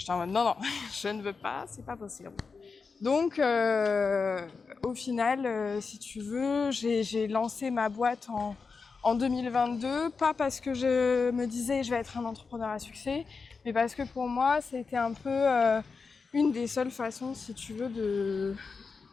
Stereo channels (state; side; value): quieter; right; 4.8 dB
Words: en mode non, je ne veux pas, c'est pas possible. Donc, au final, si tu veux, j'ai lancé ma boîte en 2022, pas parce que je me disais je vais être un entrepreneur à succès, mais parce que pour moi, c'était un peu une des seules façons, si tu veux,